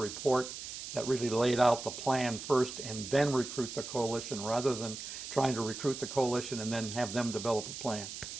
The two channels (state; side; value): noise; right; hiss, 9 dB below the sound